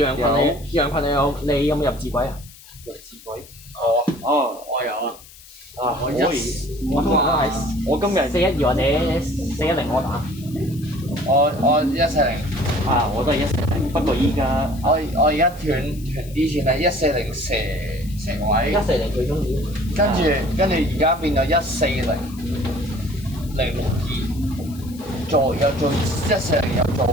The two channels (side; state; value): left; noise; hiss, 21 dB below the sound